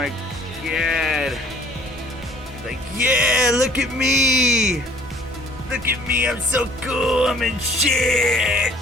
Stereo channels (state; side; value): normal; both; correlation 0.56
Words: god. Like, yeah, look at me. Look at me, I'm so cool, I'm in shit.